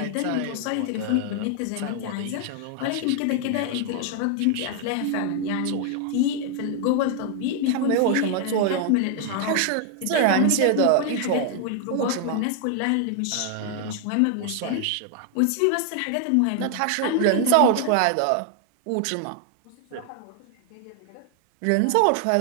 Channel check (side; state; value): both; different; correlation 0.00